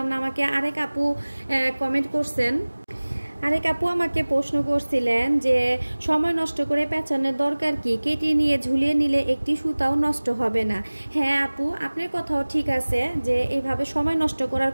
না। আমাকে আরেক আপু কমেন্ট করছেন, আরেক আপু আমাকে প্রশ্ন করছিলেন যে সময় নষ্ট করে পেঁচানোর দরকার কি, কেটে নিয়ে ঝুলিয়ে নিলে একটি সুতাও নষ্ট হবে না। হ্যাঁ আপু, আপনার কথাও ঠিক আছে যে এইভাবে সময় নষ্ট করার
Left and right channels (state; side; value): inverted; both; correlation -1.00